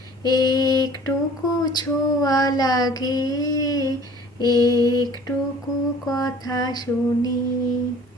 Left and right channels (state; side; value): normal; both; correlation 0.50